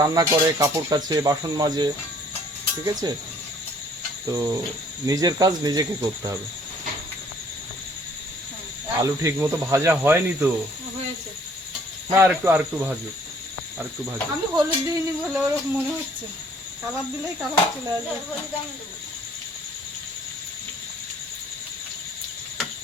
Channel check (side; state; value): both; normal; correlation 0.59